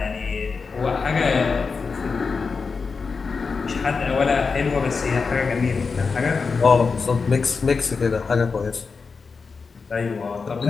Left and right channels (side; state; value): right; quieter; 4.9 dB